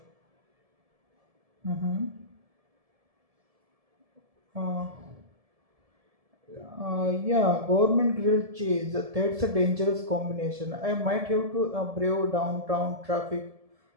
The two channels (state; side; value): late; left; 1.7 ms